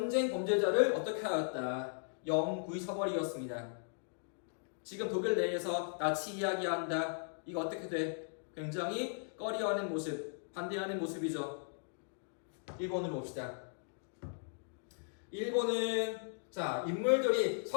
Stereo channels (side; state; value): right; silent; digital silence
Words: 범죄자를 어떻게 하였다? 영구히 처벌이었습니다. 지금 독일 내에서 나치 이야기한다. 이거 어떻게 돼? 굉장히 꺼려하는 모습, 반대하는 모습이죠. 일본으로 봅시다. 일본은 인물들이